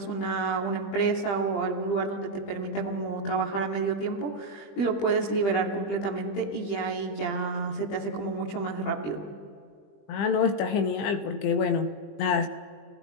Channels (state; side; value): late; right; 20 ms